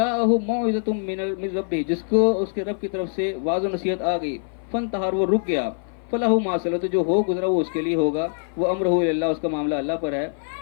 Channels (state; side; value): silent; right; 56 dB below the other